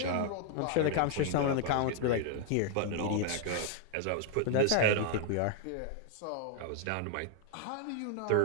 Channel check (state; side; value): different; both; correlation 0.00